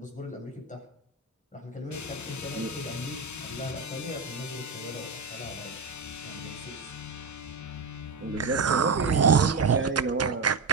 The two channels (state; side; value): quieter; left; 4.4 dB